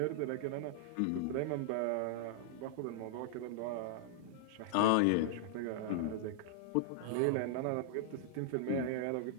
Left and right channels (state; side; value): different; both; correlation -0.01